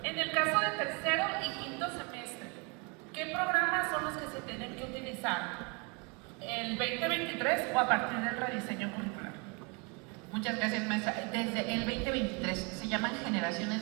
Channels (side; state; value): left; quieter; 30.2 dB